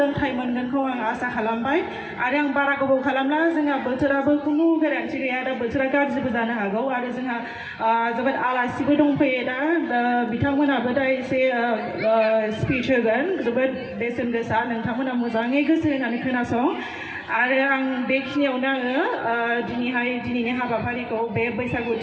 मोनगोनखौ आं आसा खालामबाय। आरो आं बारा गोबाव खालामला, जोंहा बोथोराबो खुनु गेरेन्थि गैया, दा बोथोरा गाज्रिबो जानो हागौ। आरो जोंहा जोबोद आलासिबो दंफैयो दा बिथांमोनाबो दा एसे स्पिच होगोन जोबोद बेसेन गोसा, नोंथांमोना मोजाङै गोसो होनानै खोनासं। आरो आं बेखिनियावनो आङो दिनैनि हाबाफारिखौ बे बैसागु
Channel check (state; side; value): identical; both; correlation 1.00